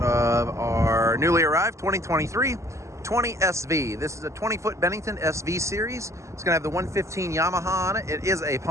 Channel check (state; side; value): late; left; 0.14 ms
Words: our newly arrived 2023 20SV. This is a 20-foot Bennington SV series. It's going to have the 115 Yamaha on it. It is a